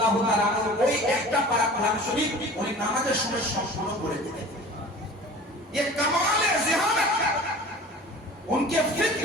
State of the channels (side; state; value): both; normal; correlation 0.41